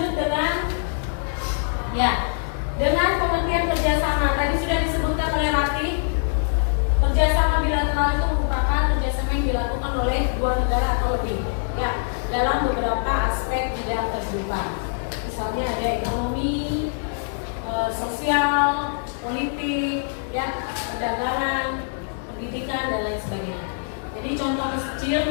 dengan, ya, dengan pengertian kerjasama. Tadi sudah disebutkan oleh Rati. Kerjasama bilateral itu merupakan kerjasama yang dilakukan oleh dua negara atau lebih, ya, dalam beberapa aspek bidang kehidupan. Misalnya ada ekonomi, sosial, politik, ya, perdagangan, pendidikan dan lain sebagainya. Jadi contoh kecil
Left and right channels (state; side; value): silent; right; digital silence